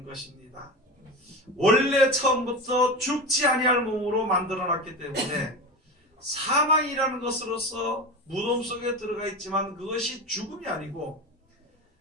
것입니다. 원래 처음부터 죽지 아니할 몸으로 만들어놨기 때문에 사망이라는 것으로서 무덤 속에 들어가 있지만 그것이 죽음이 아니고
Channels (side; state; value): both; normal; correlation 0.25